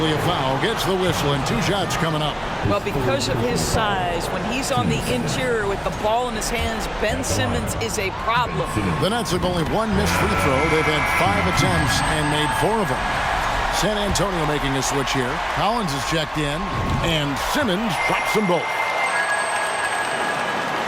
a foul. Gets the whistle and 2 shots coming up. Well, because of his size, when he's on the interior with the ball in his hands, Ben Simmons is a problem. The Nets have only 1 missed free throw. They've had 5 attempts and made 4 of them. San Antonio making a switch here. Collins is checked in, and Simmons drops them both.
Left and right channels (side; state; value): both; identical; correlation 1.00